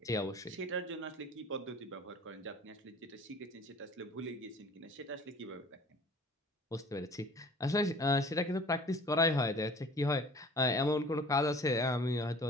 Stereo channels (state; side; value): normal; both; correlation 0.47